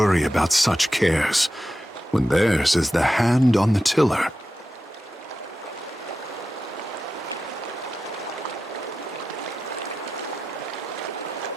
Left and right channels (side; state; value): both; normal; correlation 0.91